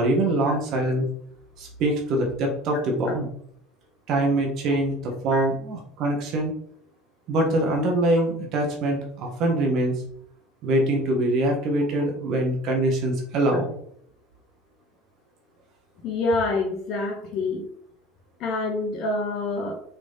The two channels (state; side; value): normal; both; correlation 0.45